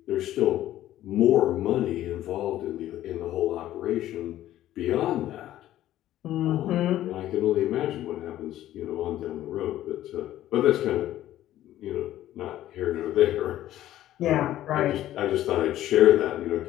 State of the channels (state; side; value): quieter; right; 13.5 dB